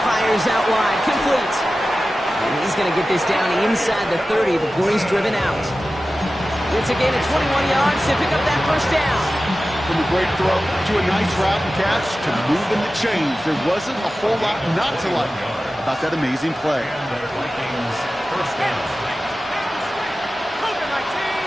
fires out wide, complete. And he's going to get this down inside the 30 before he's driven out. It's a gain of 21 yards to pick up that first down. From a great throw to a nice route and catch to moving the chains. There wasn't a whole lot not to like about that amazing play.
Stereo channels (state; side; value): normal; both; correlation 0.95